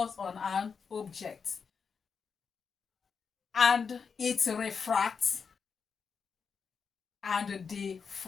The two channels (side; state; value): right; quieter; 5.8 dB